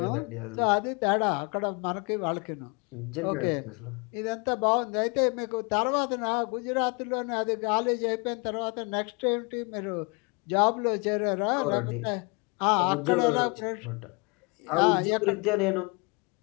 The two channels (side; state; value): right; quieter; 31.0 dB